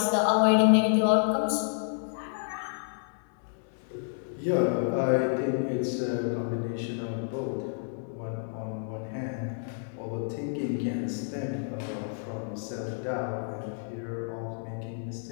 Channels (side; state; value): right; silent; digital silence